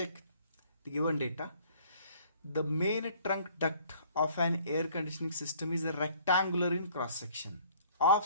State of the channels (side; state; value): both; inverted; correlation -0.57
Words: the given data. The main trunk duct of an air conditioning system is a rectangular in cross section